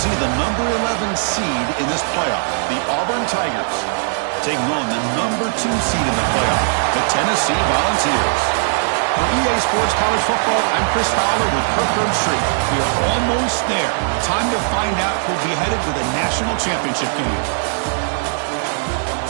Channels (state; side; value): silent; left; 64 dB below the other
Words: the number 11 seed in this playoff, the Auburn Tigers, taking on the number 2 seed in the playoff, the Tennessee Volunteers. For EA Sports College Football, I'm Chris Fowler with Kirk Herbstreit. We are almost there. Time to find out who'll be headed to the national championship game.